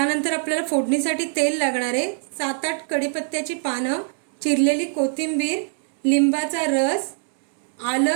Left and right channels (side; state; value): left; silent; 63 dB below the other